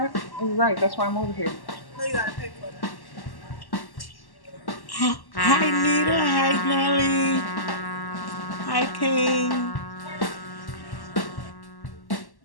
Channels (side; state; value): right; late; 1.1 ms